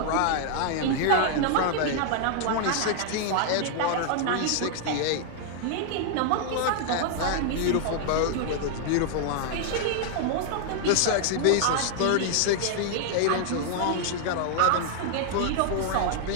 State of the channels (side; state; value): both; different; correlation 0.00